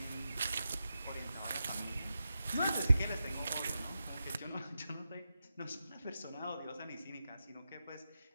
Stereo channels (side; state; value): both; inverted; correlation -0.90